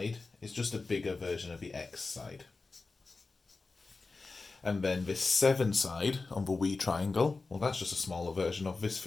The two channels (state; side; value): quieter; right; 3.9 dB